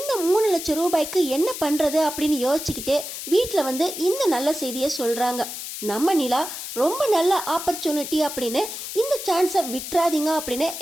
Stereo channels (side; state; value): left; noise; hiss, 8 dB below the sound